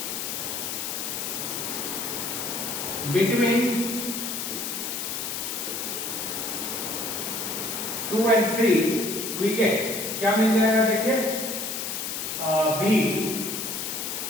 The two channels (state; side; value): noise; left; hiss, 3 dB below the sound